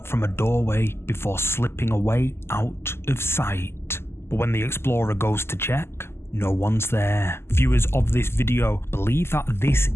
from a doorway before slipping away out of sight. But when the explorer goes to check, no one's there. Viewers of this video believe that this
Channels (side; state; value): right; late; 0.12 ms